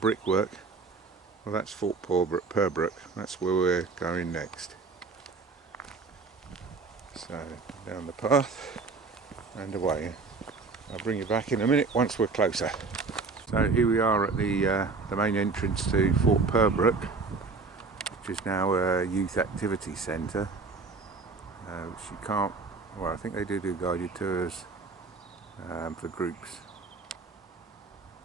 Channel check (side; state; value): left; quieter; 4.3 dB